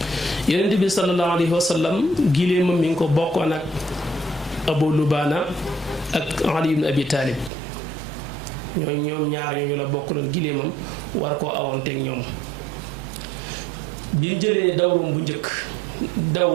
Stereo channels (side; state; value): left; drops out; at 7.5 s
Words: yonent bi sallallahu alayhi wa sallam giléemam mi ngi ko bokkoon ak Abu Lubaana ak Ali ibn Abi Talib ñoom ñaar ñooñu la bokkaloon giléemam war koo awoonteeg ñoom bi mu jëlee dawrum bu njëkk daw